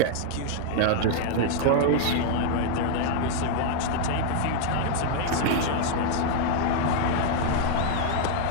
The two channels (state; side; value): different; both; correlation 0.00